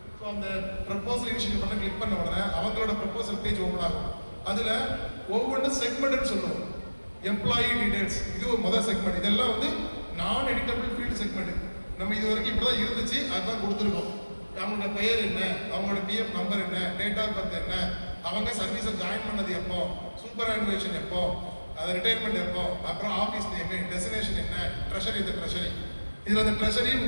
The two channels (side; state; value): both; inverted; correlation -1.00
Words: ஸோ அந்த ப்ரப்போசல் இனிஷியேஷன் பண்ண கிளிக் பண்ண உடனே அவங்களோட ப்ரப்போசல் பேஜ் ஓப்பன் ஆகும். அதில் ஒவ்வொன்றும் செக்மெண்ட்னு சொல்லுவோம். எம்ப்ளாயி டீடைல்ஸ் இது ஒரு முதல் செக்மெண்ட். இதெல்லாம் வந்து நான் எடிட்டபிள் ஃபீல்டு செக்மெண்ட். நம்ம இது வரைக்கும் இப்படி தான் இருந்துச்சு, அதுதான் கொடுத்துருக்கோம். அவங்களோட பெயர் என்ன, அவங்களோட பிஎஃப் நம்பர் என்ன, டேட் ஆஃப் பர்த் என்ன, அவங்க சர்வீஸை ஜாயின் பண்ணது எப்போ, சூப்பர் ஆனுவேஷன் எப்போ, அது ரிட்டையர்மெண்ட் எப்போ, அப்புறம் ஆஃபீஸ் நேமு, டெஸ்டினேஷன் என்ன, ட்ரெஷரி இந்த ட்ரெஷரி. இதில் அந்த ட்ரெஷரி